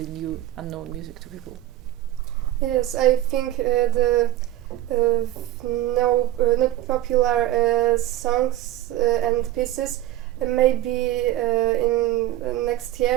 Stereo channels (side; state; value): left; quieter; 14.5 dB